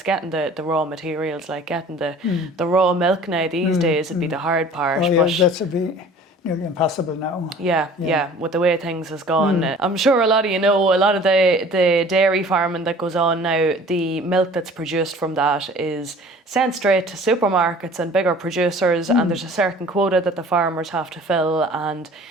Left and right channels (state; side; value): normal; both; correlation 0.48